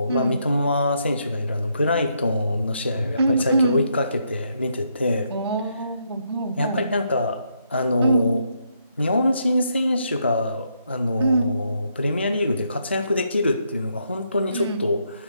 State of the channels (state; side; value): inverted; both; correlation -0.76